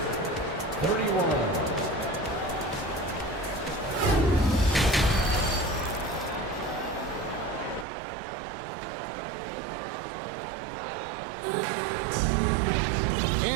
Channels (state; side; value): drops out; left; at 7.9 s